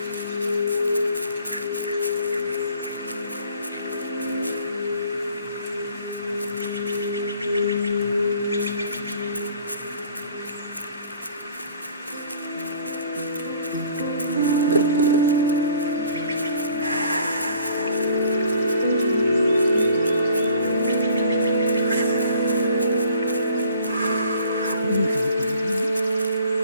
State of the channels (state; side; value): inverted; both; correlation -0.54